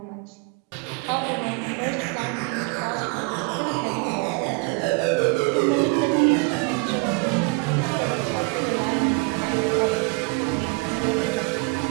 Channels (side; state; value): left; quieter; 30.4 dB